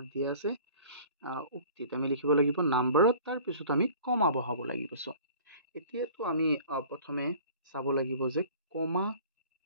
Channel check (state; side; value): inverted; both; correlation -0.47